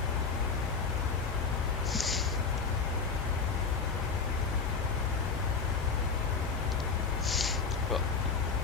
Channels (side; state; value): right; quieter; 5.0 dB